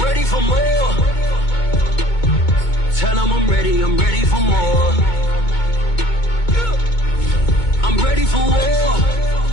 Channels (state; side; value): late; right; 2.2 ms